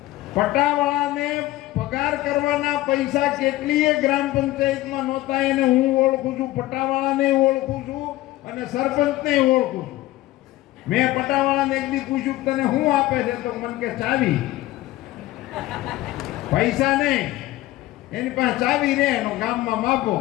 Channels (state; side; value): quieter; right; 16.8 dB